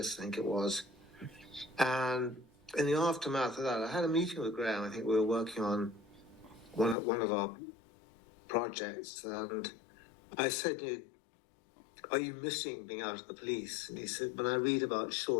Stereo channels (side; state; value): right; drops out; at 7.0 s